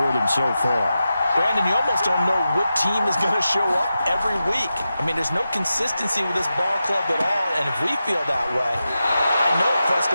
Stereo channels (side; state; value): both; inverted; correlation -0.91